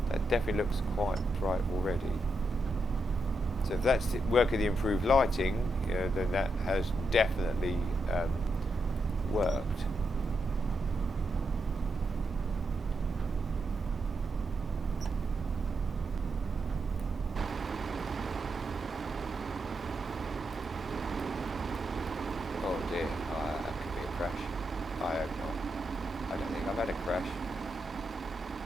That definitely looks quite bright already. So if that's the work of the improved lighting, you know, then that has definitely worked. Oh dear, that could be a crash. I hope not. I don't think I've had a crash.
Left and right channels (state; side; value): normal; both; correlation 0.83